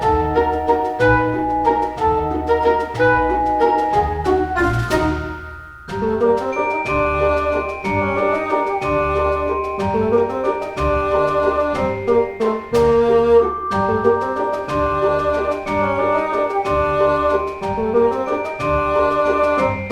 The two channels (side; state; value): both; identical; correlation 1.00